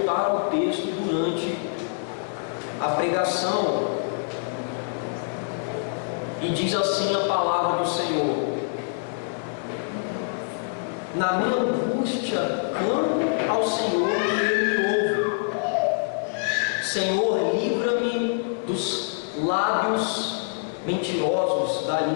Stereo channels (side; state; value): right; silent; digital silence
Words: ao texto durante a pregação. E diz assim a palavra do Senhor: na minha angústia clamo ao Senhor e Ele me ouve. Senhor, livra-me dos lábios mentirosos, da